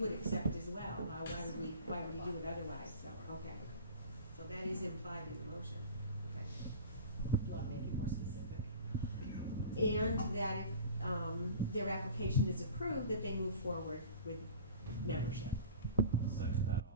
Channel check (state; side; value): inverted; both; correlation -0.39